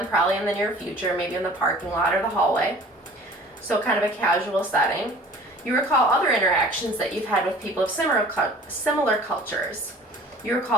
probably in the near future, maybe in the parking lot or the hallway, so kind of a casual setting. You recall other interactions that you've had with people of similar cultures. You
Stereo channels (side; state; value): both; normal; correlation 0.47